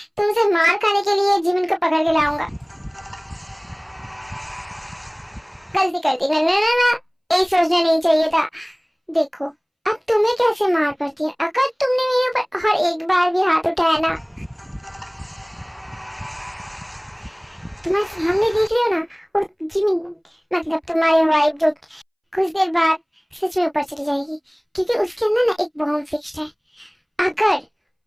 तुमसे मार खाने के लिए जीवन को पकड़ के लाऊंगा? गलती कर दी मैंने ना, ये सोचना नहीं चाहिए था। देखो अब तुम्हें कैसे मार पड़ती है अगर तुमने मेरे ऊपर हर एक बार भी हाथ उठाया ना। तुम्हारे सामने देख रहे हो ना वो जिमी, मतलब तुम्हारी वाइफ जो कुछ देर बाद सच में ऊपर चली जाएगी, क्योंकि उसके अंदर ना एक बॉम्ब फिक्स्ड है।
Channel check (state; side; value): identical; both; correlation 1.00